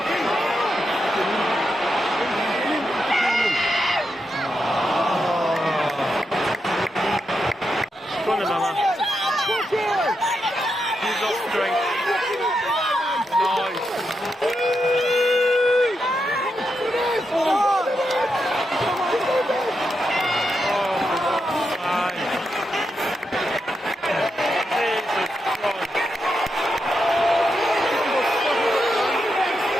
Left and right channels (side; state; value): both; normal; correlation 0.85